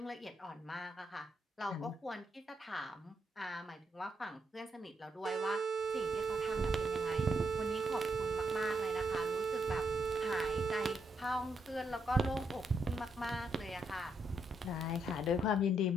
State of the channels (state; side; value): normal; both; correlation 0.78